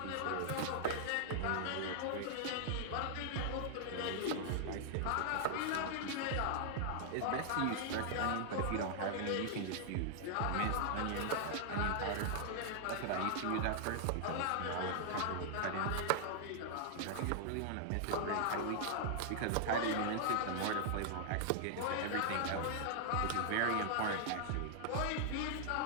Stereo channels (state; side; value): different; both; correlation -0.01